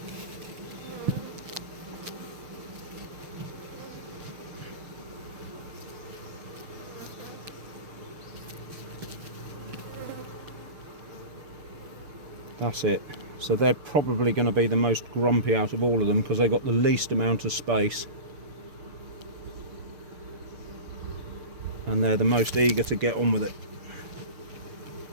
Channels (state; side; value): late; left; 6.5 ms